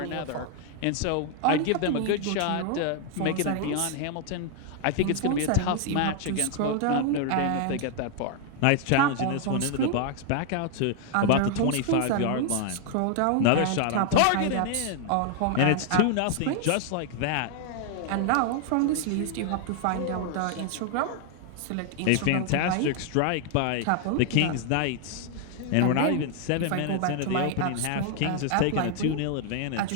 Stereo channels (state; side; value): different; both; correlation 0.00